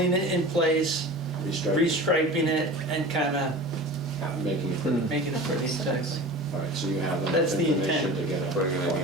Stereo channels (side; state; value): both; normal; correlation 0.36